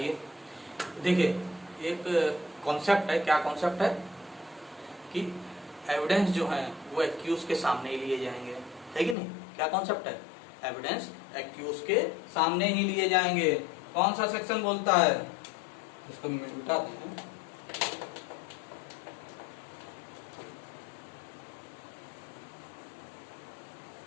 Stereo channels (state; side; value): drops out; right; at 9.2 s